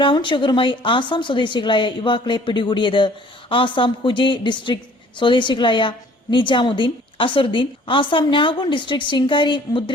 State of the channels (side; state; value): both; normal; correlation 0.54